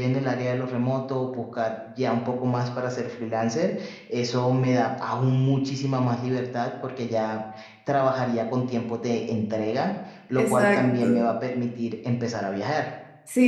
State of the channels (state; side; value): identical; both; correlation 1.00